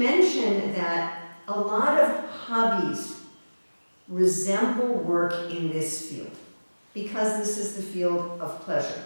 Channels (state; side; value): inverted; both; correlation -1.00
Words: that a lot of hobbies resemble work in this field, because this is the field of pleasure.